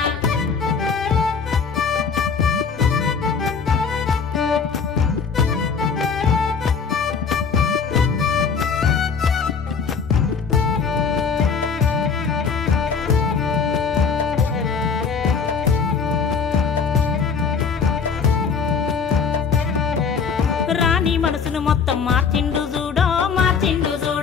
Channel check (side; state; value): right; quieter; 5.8 dB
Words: రాణి మనసును మొత్తం మార్చిండు చూడో మార్చిండు